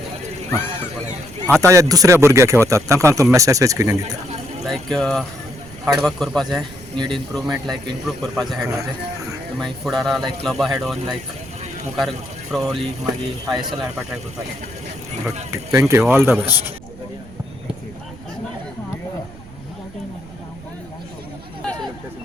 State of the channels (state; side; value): noise; right; rumble, 19 dB below the sound